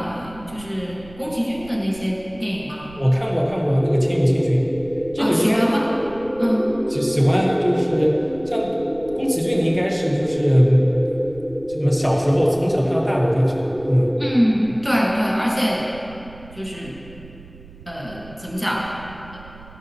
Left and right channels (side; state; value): right; noise; rumble, 20 dB below the sound